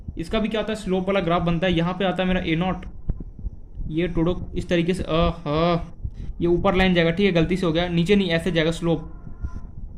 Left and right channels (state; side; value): identical; both; correlation 1.00